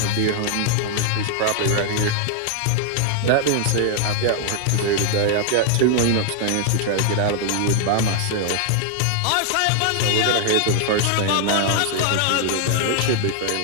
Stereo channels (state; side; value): different; both; correlation 0.00